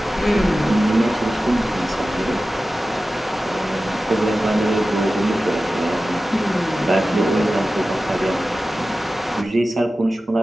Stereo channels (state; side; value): normal; both; correlation 0.95